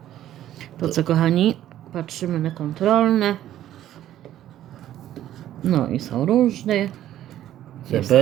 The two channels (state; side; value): quieter; left; 12.4 dB